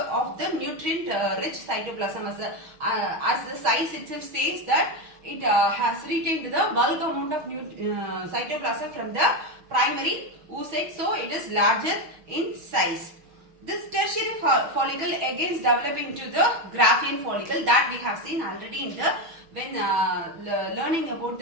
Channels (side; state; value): left; late; 6.3 ms